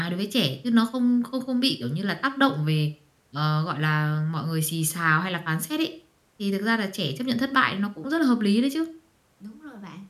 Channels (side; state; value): both; identical; correlation 1.00